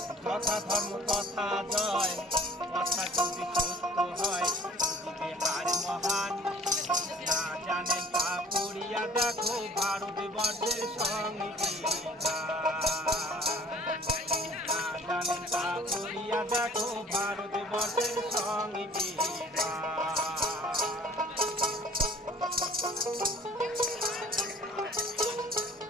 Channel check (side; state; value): both; normal; correlation 0.51